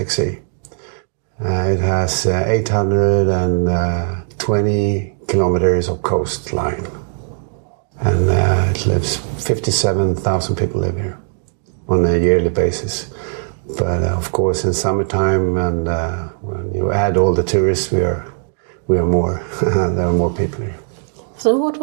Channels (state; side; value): silent; left; digital silence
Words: Sea. It has 820 kilometers of coastline, and it lives 57,000 people live here on a yearly basis. But of course, in summertime, and when you add all the tourists, we are more. There are more people here. So what